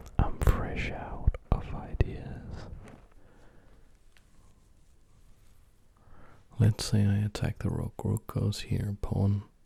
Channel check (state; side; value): identical; both; correlation 1.00